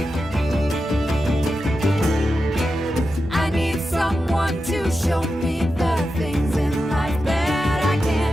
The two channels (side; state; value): right; noise; hum, 21 dB below the sound